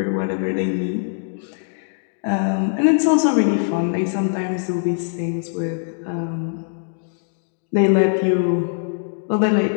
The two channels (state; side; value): silent; right; digital silence